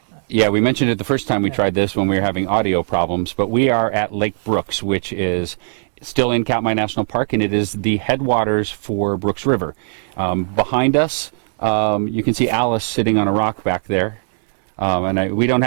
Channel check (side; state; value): left; silent; digital silence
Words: Yeah, we mentioned it the first time we tried this when we were having audio problems, but we are at Lake Brooks, which is still in Katmai National Park, and it is the headwaters for Brooks River. Behind us, you can see Alice sitting on a rock back there. We don't